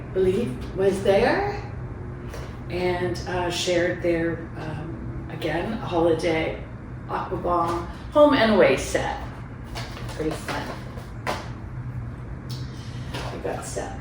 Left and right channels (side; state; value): both; identical; correlation 1.00